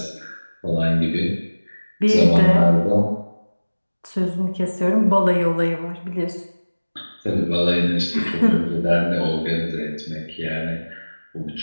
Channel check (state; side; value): inverted; both; correlation -1.00